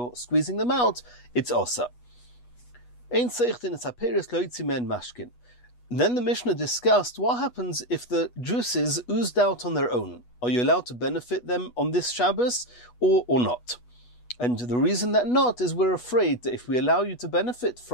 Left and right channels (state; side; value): late; right; 8.2 ms